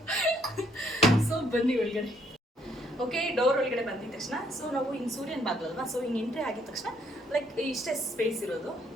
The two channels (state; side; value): normal; both; correlation 0.68